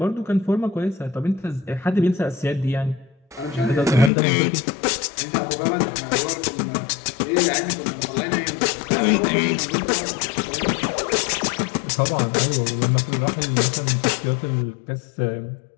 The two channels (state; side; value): drops out; right; at 4.1 s